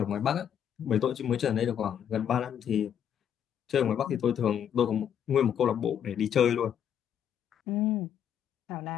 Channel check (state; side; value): quieter; right; 9.0 dB